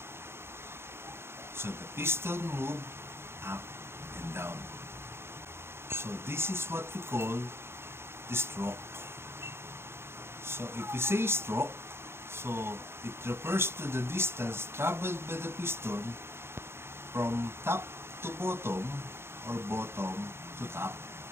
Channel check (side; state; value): left; late; 0.12 ms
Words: So the piston move up and down. So this is what we call the stroke. So if we say stroke, so it refers to the distance traveled by the piston from top to bottom or bottom to top.